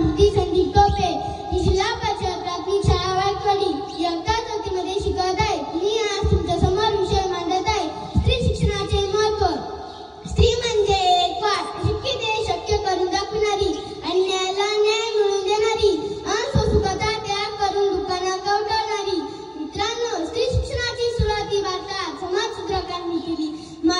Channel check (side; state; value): both; identical; correlation 1.00